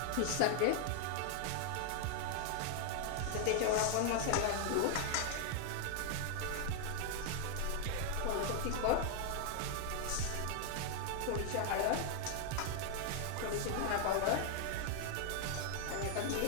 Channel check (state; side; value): different; both; correlation 0.00